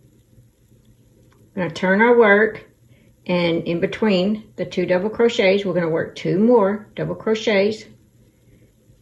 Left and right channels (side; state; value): both; identical; correlation 1.00